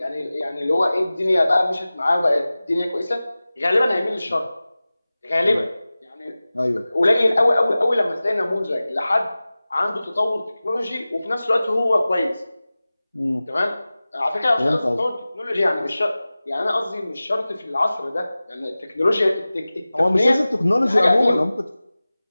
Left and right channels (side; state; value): both; inverted; correlation -0.97